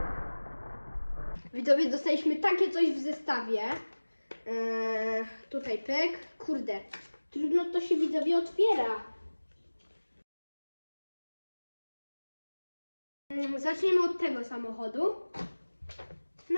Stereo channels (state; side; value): inverted; both; correlation -1.00